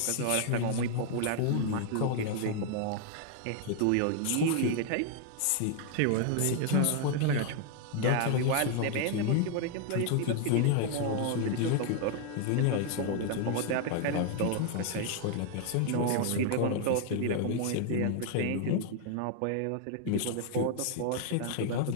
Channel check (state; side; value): different; both; correlation 0.00